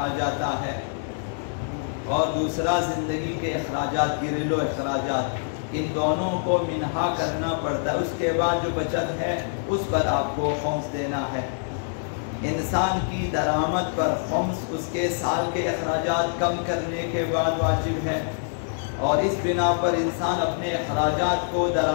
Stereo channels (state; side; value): silent; right; 61 dB below the other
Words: جاتا ہے، اور دوسرا زندگی کے اخراجات، گھریلو اخراجات، ان دونوں کو منہا کرنا پڑتا ہے۔ اس کے بعد جو بچت ہے اس پر آپ کو خمس دینا ہے۔ انسان کی درآمد پر خمس اس کے سال کے اخراجات کم کرنے کے بعد واجب ہے، اور اس بنا پر انسان اپنے اخراجات کو